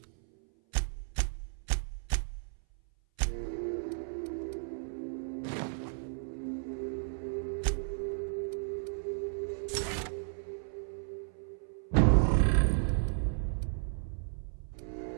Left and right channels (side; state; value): left; silent; 55 dB below the other